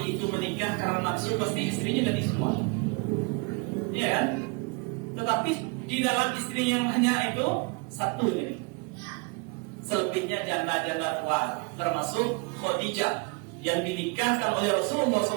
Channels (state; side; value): quieter; left; 31.8 dB